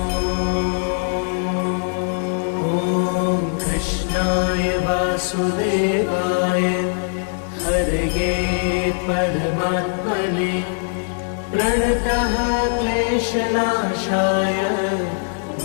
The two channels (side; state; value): right; silent; digital silence